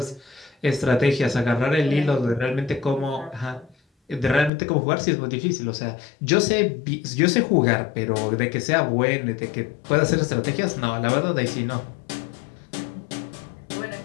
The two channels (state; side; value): drops out; right; at 4.5 s